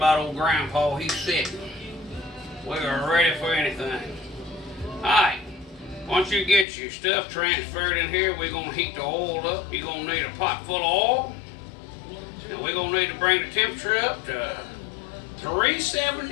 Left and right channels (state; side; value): drops out; right; at 6.7 s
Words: old Grandpa. He's sick. We are ready for anything. Alright, once you get your stuff transferred in here, we're going to heat the oil up. You're going to need a pot full of oil. And we're going to need to bring the temperature up to